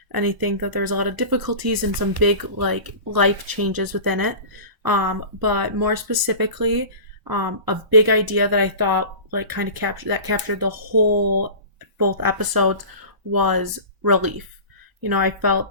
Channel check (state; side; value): late; left; 1.0 ms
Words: I think that there's a lot of difficulties and some big like life changes within it. But more specifically, a big idea that I thought like kind of captured the whole both episodes was relief. I felt